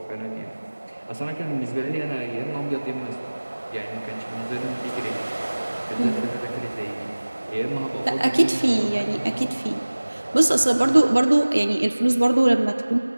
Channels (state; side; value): inverted; both; correlation -1.00